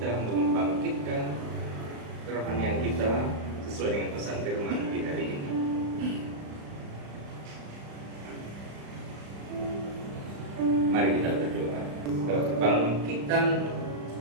Sesuai dengan pesan firman di hari ini. Mari kita berdoa. Kebangkitan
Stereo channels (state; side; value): late; left; 35 ms